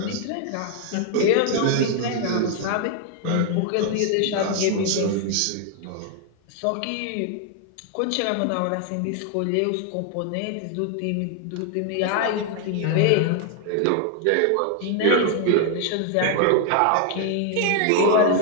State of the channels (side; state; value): both; different; correlation 0.00